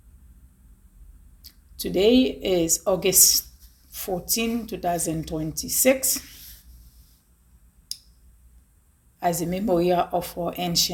Today is August 14, 2026, as a memorial of our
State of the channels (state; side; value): identical; both; correlation 1.00